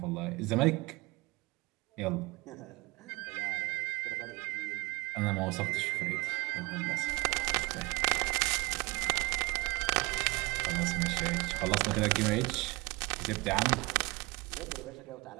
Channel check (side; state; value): left; quieter; 23.8 dB